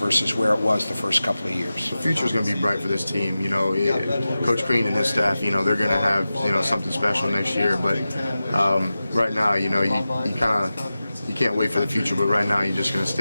where it was the first couple of years. The future is going to be bright for this team. Coach Green and his staff, they're going to have something special next year. But right now, you can't wait for the future. But right now, you're just going to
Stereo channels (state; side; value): inverted; both; correlation -0.94